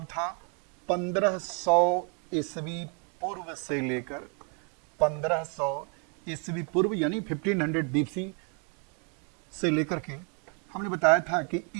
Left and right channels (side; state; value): left; quieter; 38.2 dB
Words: था, 1500 ईस्वी पूर्व से लेकर 1500 ईस्वी पूर्व यानी 1500 बीसी से लेकर के हमने बताया था कि